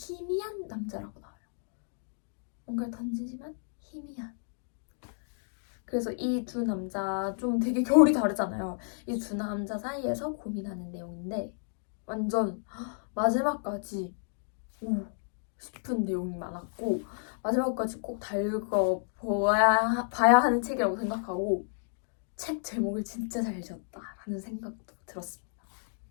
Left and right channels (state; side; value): silent; right; digital silence